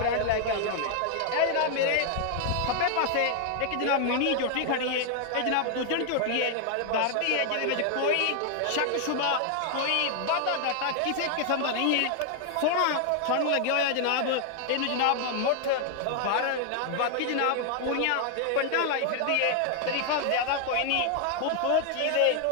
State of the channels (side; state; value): both; different; correlation 0.00